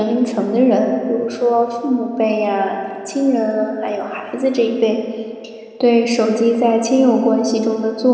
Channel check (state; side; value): identical; both; correlation 1.00